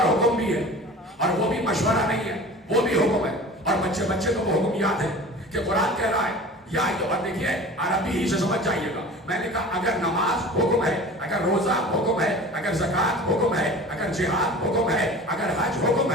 حکم بھی ہے، اور وہ بھی مشورہ نہیں ہے، وہ بھی حکم ہے۔ اور بچے کو وہ حکم یاد ہے کہ قرآن کہہ رہا ہے یا دیکھیے عربی ہی سے سمجھ جائیے گا، میں نے کہا اگر نماز حکم ہے، اگر روزہ حکم ہے، اگر زکوٰۃ حکم ہے، اگر جہاد حکم ہے، اگر حج حکم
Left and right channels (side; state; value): both; normal; correlation 0.39